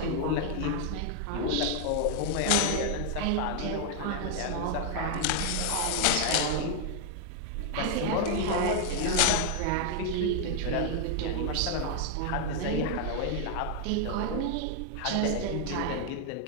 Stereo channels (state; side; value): different; both; correlation 0.00